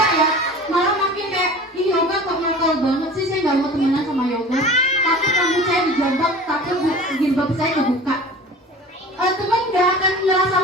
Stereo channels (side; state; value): both; normal; correlation 0.40